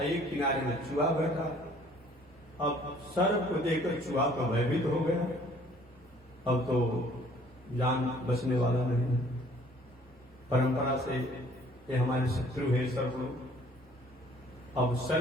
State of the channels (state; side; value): normal; both; correlation 0.57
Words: एक किनारे में चूहा बैठा है। अब सर्प को देखकर चूहा तो भयभीत हो गया, अब तो जान बचने वाला नहीं है। परंपरा से ये हमारे शत्रु है सर्प लोग। अब